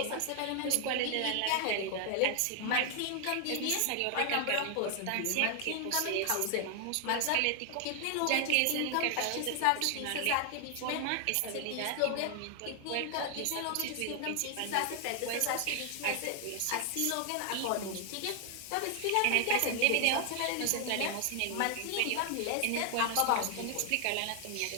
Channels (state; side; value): different; both; correlation 0.00